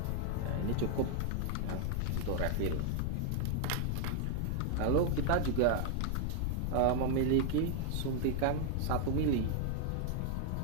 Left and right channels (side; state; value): both; different; correlation 0.00